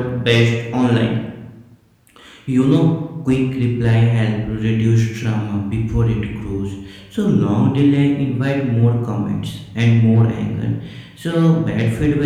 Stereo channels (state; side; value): identical; both; correlation 1.00